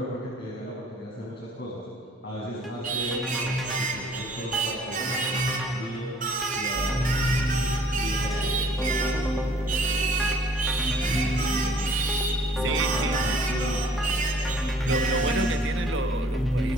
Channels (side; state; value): both; normal; correlation 0.57